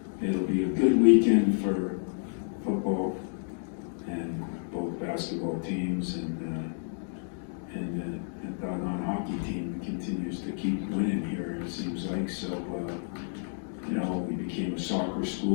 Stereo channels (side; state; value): right; silent; digital silence